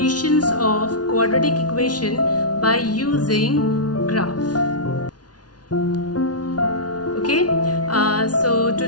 of quadratic equation by using graph. Okay, so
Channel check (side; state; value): right; late; 0.69 ms